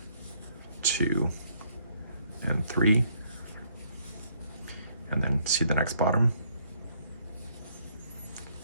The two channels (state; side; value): inverted; both; correlation -0.68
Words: 2, and 3. And then see the next bottom?